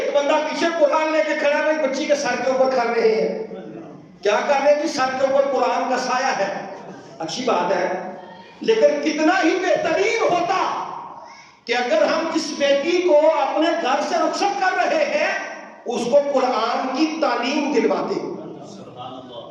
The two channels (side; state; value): both; identical; correlation 1.00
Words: بندہ پیچھے قرآن لے کے کھڑا ہے، بچی کے سر کے اوپر کر رہے ہیں۔ کیا کر رہے ہیں؟ سر کے اوپر قرآن کا سایہ ہے، اچھی بات ہے، لیکن کتنا ہی بہترین ہوتا کہ اگر ہم جس بیٹی کو اپنے گھر سے رخصت کر رہے ہیں اس کو قرآن کی تعلیم دلواتے۔